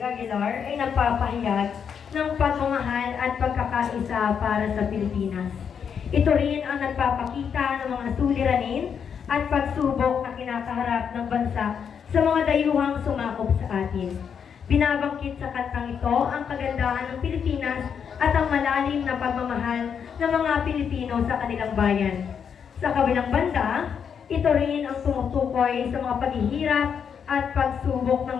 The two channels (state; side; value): quieter; right; 7.3 dB